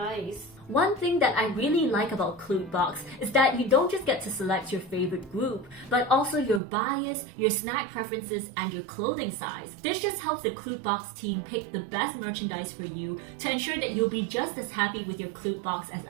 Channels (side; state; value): left; drops out; at 6.6 s